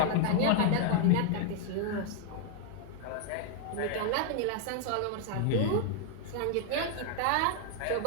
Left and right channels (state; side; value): different; both; correlation 0.00